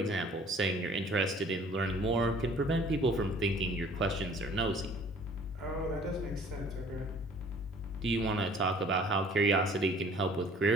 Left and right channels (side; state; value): both; normal; correlation 0.53